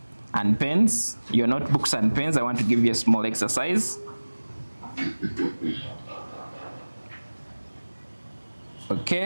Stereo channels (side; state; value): both; inverted; correlation -1.00